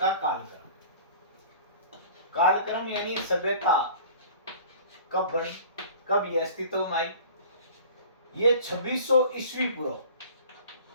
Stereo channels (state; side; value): inverted; both; correlation -0.43